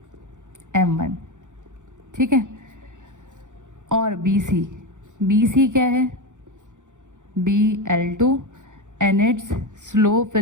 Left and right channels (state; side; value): late; left; 0.86 ms